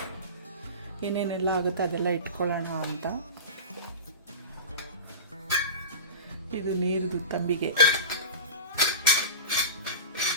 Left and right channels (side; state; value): both; inverted; correlation -0.30